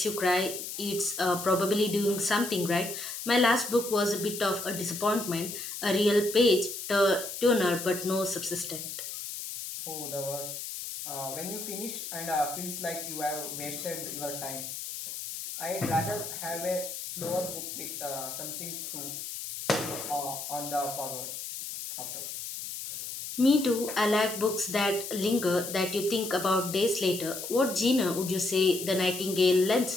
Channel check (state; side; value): noise; left; hiss, 7 dB below the sound